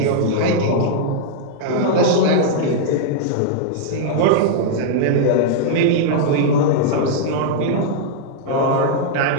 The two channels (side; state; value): both; different; correlation -0.01